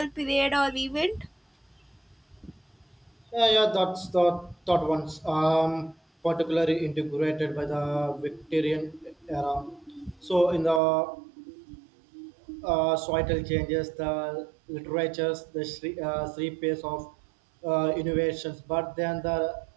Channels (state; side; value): drops out; left; at 10.8 s